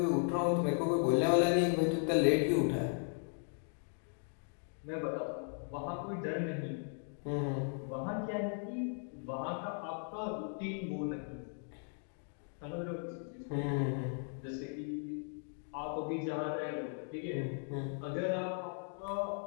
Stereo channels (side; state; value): right; silent; 53 dB below the other